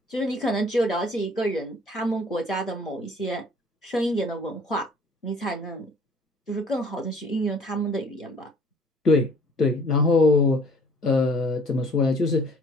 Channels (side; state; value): both; normal; correlation 0.55